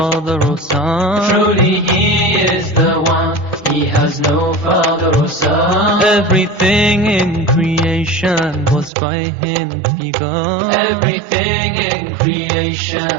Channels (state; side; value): drops out; left; at 8.9 s